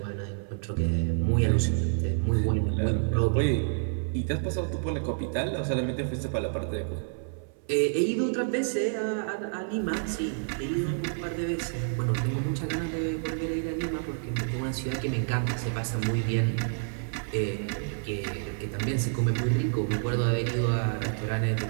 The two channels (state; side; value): silent; left; 59 dB below the other